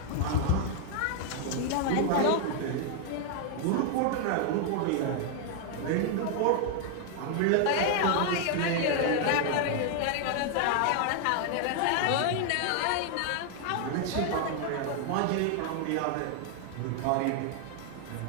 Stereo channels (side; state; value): both; different; correlation 0.00